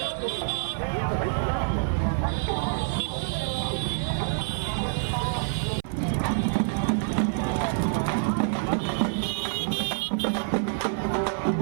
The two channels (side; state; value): left; silent; 56 dB below the other